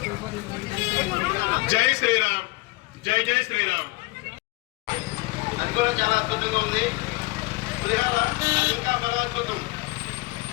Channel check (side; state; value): right; quieter; 23.1 dB